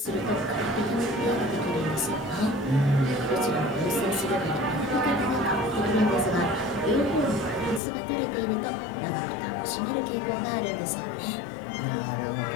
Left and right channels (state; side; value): drops out; right; at 7.8 s